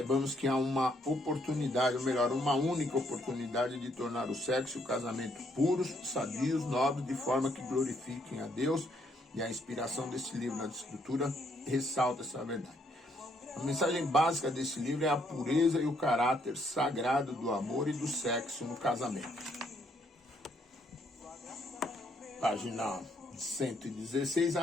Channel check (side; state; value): both; normal; correlation 0.71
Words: que há uma oportunidade, ou melhor, uma única oportunidade de tornar o sexo e o casamento puros, sadios, nobres, de forma que glorifiquem a Deus. E a inspiração desse livro na Escritura ressalta essa verdade. A mensagem básica desse livro é a pureza e o caráter sagrado do amor e do sexo no casamento. Página 116,